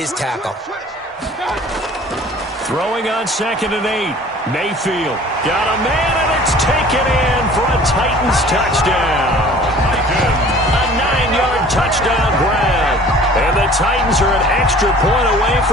tackle. Throwing on 2nd and 8. Mayfield got a man, and it's taken in for a Titans touchdown. A 9-yard touchdown grab. And the Titans are an extra point away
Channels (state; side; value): normal; both; correlation 0.48